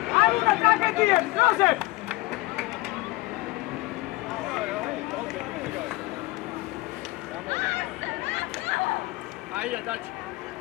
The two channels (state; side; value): quieter; right; 21.0 dB